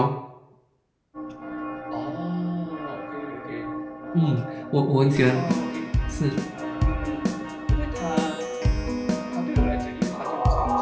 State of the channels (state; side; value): identical; both; correlation 1.00